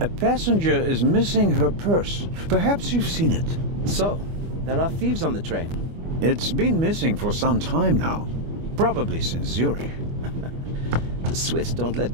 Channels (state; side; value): late; left; 25 ms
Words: A passenger is missing her purse. Perhaps you've seen it. So, there are thieves on the train. It's been missing for some time now. Probably since Zurich. The Swiss don't let